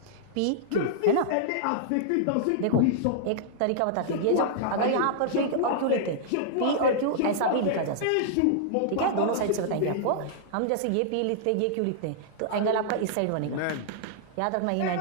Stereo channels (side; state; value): both; different; correlation -0.01